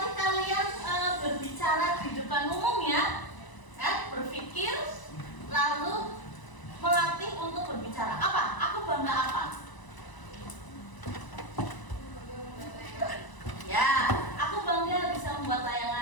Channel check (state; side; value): late; right; 1.0 ms